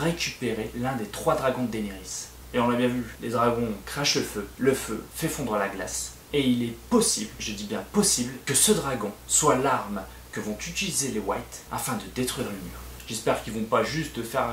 l'un des 3 dragons de Daenerys. Et on l'a bien vu, les dragons crachent le feu fait fondre la glace, Et il est possible, je dis bien possible, que ce dragon soit l'arme que vont utiliser les Whites afin de détruire le mur. J'espère qu'ils vont pas juste faire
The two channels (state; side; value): identical; both; correlation 1.00